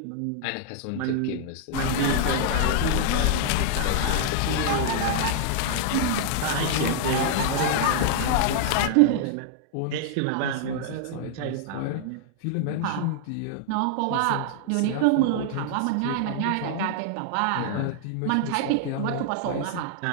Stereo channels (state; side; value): different; both; correlation -0.01